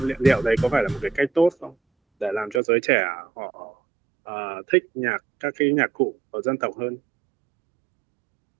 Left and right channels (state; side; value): drops out; left; at 2.6 s